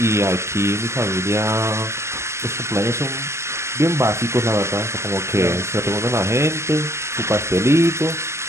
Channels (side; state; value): left; late; 0.13 ms